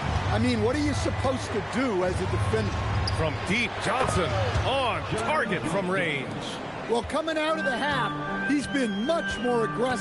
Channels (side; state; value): both; identical; correlation 1.00